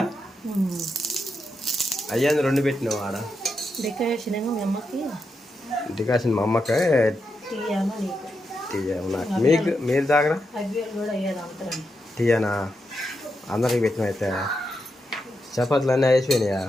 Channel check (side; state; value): both; normal; correlation 0.85